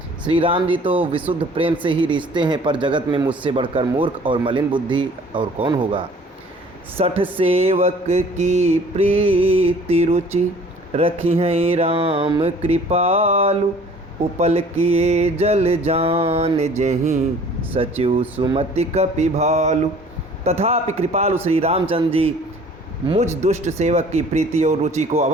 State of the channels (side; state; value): both; normal; correlation 0.51